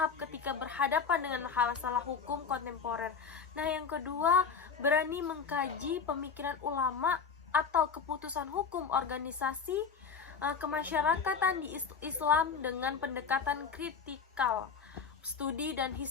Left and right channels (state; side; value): quieter; right; 6.0 dB